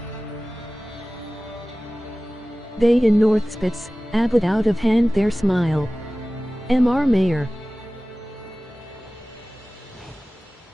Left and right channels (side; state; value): both; normal; correlation 0.97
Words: They in Northspitz, Abbott out of hand their smile. M.R. Mayor.